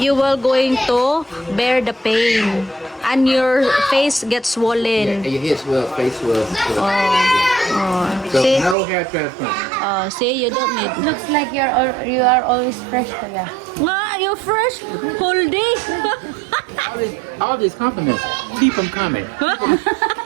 will going to bear the pain. And your face gets Yeah, swollen. and your head swell, face swell. So See? no hair transplant. See, you don't need. Looks like you are always fresh, kuya. Ah, you're fresh whole day. All these compliments, keep them coming.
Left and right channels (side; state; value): left; drops out; at 8.8 s